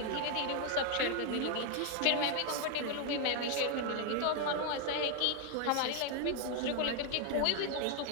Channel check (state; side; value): different; both; correlation 0.01